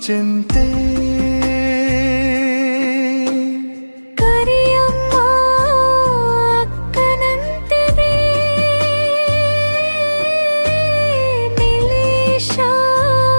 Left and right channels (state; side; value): inverted; both; correlation -1.00